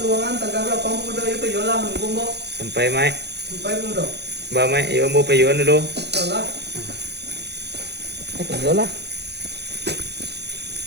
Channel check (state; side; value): late; left; 0.49 ms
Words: taga bra pang pemuda iyo payola menunggu mo. Sampai mai. Sampai pemuda. Ba mai yo mo payon dulu. Salah. Ay kayo lah.